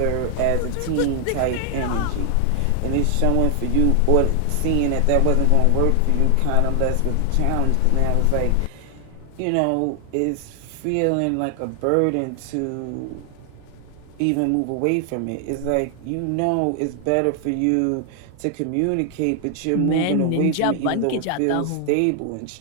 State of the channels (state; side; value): different; both; correlation 0.00